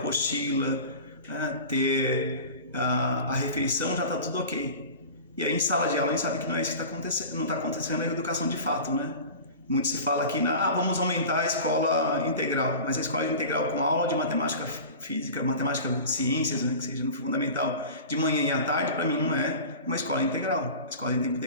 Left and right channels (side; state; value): both; inverted; correlation -0.35